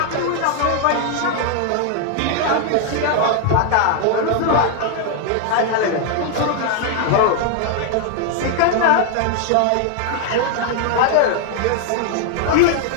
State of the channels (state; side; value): different; both; correlation 0.00